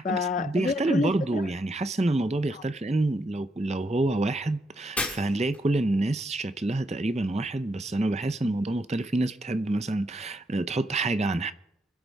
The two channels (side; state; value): both; normal; correlation 0.78